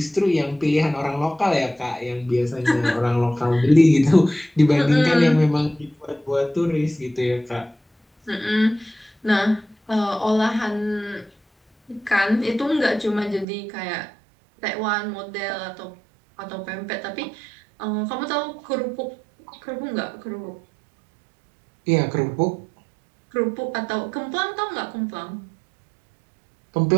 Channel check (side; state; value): left; drops out; at 13.5 s